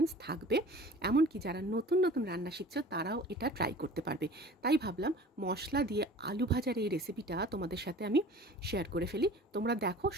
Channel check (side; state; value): both; normal; correlation 0.44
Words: থাকবে। এমনকি যারা নতুন নতুন রান্না শিখছো তারাও এটা ট্রাই করতে পারবে। তাই ভাবলাম মশলা দিয়ে আলু ভাজার এই রেসিপিটা তোমাদের সাথে আমি শেয়ার করে ফেলি। তোমরা দেখো